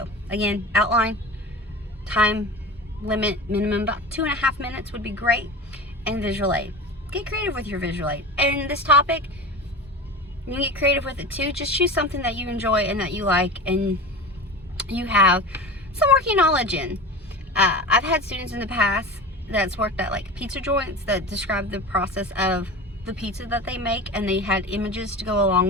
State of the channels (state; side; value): normal; both; correlation 0.32